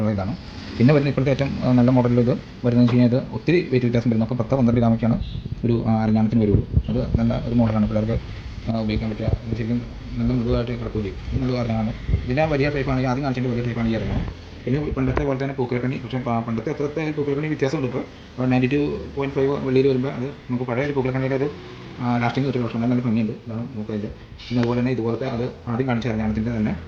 ഇതാണ്. പിന്നെ വരുന്ന ഇപ്പോഴത്തെ ഏറ്റവും നല്ല മോഡലിൽ ഇത് വരുന്നതെന്ന് വെച്ച് കഴിഞ്ഞാൽ ഇത് ഒത്തിരി വെയിറ്റ് വ്യത്യാസം വരും. നമുക്ക് 10-12 ഗ്രാമൊക്കെയാണ് ഒരു അരഞ്ഞാണത്തിന് വരുള്ളൂ. അത് നല്ല ഒരു മോഡലാണ് പിള്ളേർക്ക് ഉപയോഗിക്കാൻ പറ്റുക. ശരിക്കും നല്ല മൃദുവായിട്ട് കിടക്കുകയും ചെയ്യും. ഇത് നല്ല അരഞ്ഞാണ്. ഇതിൻ്റെ വലിയ ടൈപ്പാണെങ്കിൽ ആദ്യം കാണിച്ചതിൻ്റെ വലിയ ടൈപ്പാണ് ഈ അരഞ്ഞാണ്. പിന്നെ പണ്ടത്തെ പോലെ തന്നെ പൂക്കലക്കണ്ണി, പക്ഷേ പണ്ടത്തെ അത്രത്തെ പൂക്കലക്കണ്ണി വ്യത്യാസമുണ്ട്. ഇപ്പോൾ 92.5 വെള്ളിയിൽ വരുമ്പോൾ അത് നമുക്ക് പഴയ ഒരു പൂക്കലക്കണ്ണിയുടെ ഒരു ലാസ്റ്റിംഗ് കിട്ടുന്ന പക്ഷേ നല്ല ഭംഗിയുണ്ട്. ഇതാണ് നമുക്കതിൻ്റെ. പിന്നെ അതുപോലെ തന്നെ ഇതുപോലത്തെ അത് ആദ്യം കാണിച്ച അരഞ്ഞാണത്തിൻ്റെ തന്നെ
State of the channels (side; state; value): both; identical; correlation 1.00